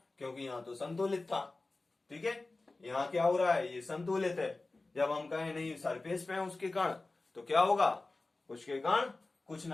क्योंकि यहाँ तो संतुलित था, ठीक है, यहाँ क्या हो रहा है, ये संतुलित है। जब हम कहें नहीं सरफेस पे है उसके कण, तो क्या होगा, उसके कण कुछ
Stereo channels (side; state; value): right; quieter; 3.3 dB